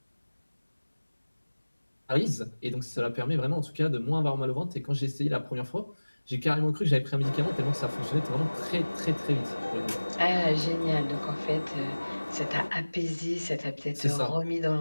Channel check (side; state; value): both; inverted; correlation -1.00